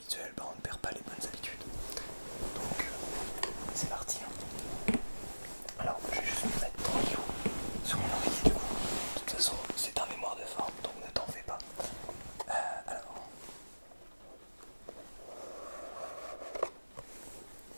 bah on ne perd pas les bonnes habitudes. Donc, c'est parti. Hein. Alors, je vais juste me mettre tranquille sur mon oreiller du coup. De toute façon, c'est un mémoire de forme, donc ne t'en fais pas. Alors.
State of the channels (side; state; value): both; inverted; correlation -1.00